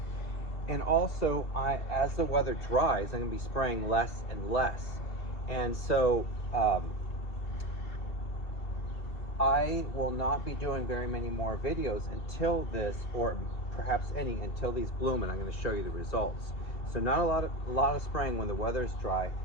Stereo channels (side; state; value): right; late; 2.5 ms